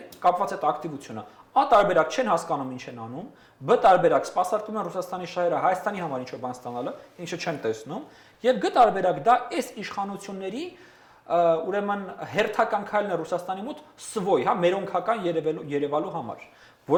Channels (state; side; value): identical; both; correlation 1.00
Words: կապված այդ ակտիվությունը։ Ա տարբերակ չեն հասկանում ինչ են անում, բ տարբերակ սպասարկում են Ռուսաստանի շահերը Հայաստանի համար ինչ-որ բան ստանալը, ինչը չեն տեսնում, եւ գ տարբերակ դա այս իշխանությունների ուրեմն հերթական քայլն է Ռուսաստանի մոտ սվոյ, հա, մերոնքական երևալու համար,